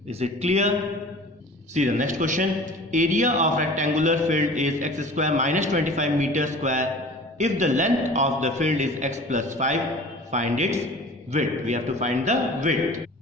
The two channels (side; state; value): both; normal; correlation 0.43